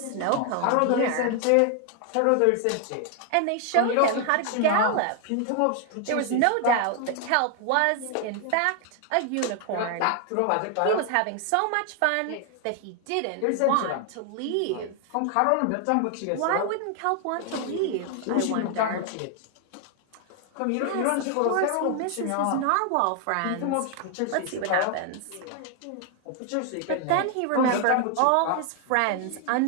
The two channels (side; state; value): both; different; correlation 0.00